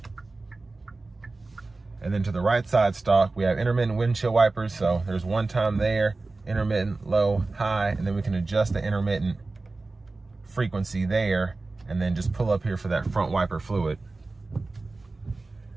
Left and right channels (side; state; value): left; quieter; 3.5 dB